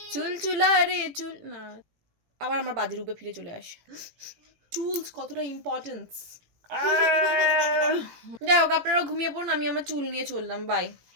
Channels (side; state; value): left; late; 18 ms